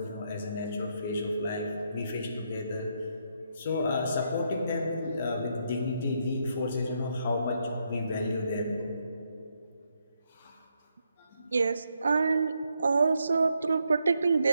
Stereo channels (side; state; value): both; inverted; correlation -0.78